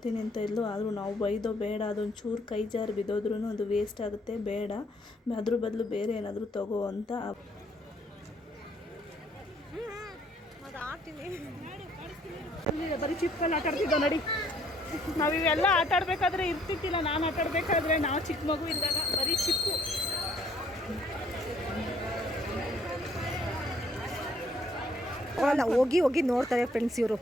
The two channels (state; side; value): normal; both; correlation 0.64